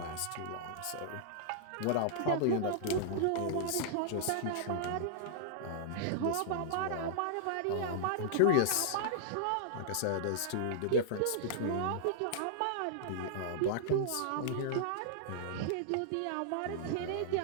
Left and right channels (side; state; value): both; different; correlation -0.01